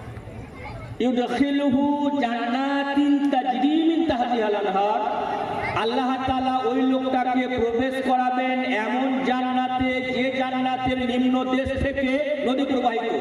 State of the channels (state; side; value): identical; both; correlation 1.00